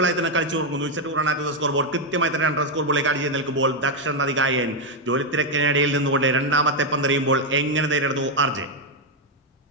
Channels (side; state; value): both; normal; correlation 0.03